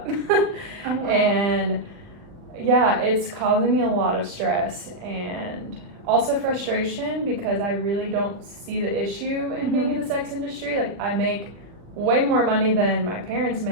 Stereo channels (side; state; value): left; late; 39 ms